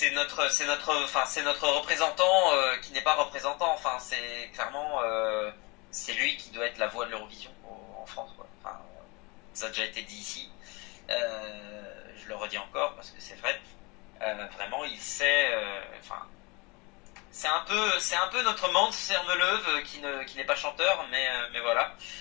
notre représentant qui n'est pas représentant. Enfin, c'est clairement, c'est lui qui doit être la voix de l'Eurovision en France, quoi. Enfin, ça a déjà été dit ici. Je le redis encore parce que c'est vrai. Vraiment, il sait. C'est un peu notre Mans Sermeleuve qui n'est pas chanteur, mais voilà,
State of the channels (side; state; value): right; quieter; 27.1 dB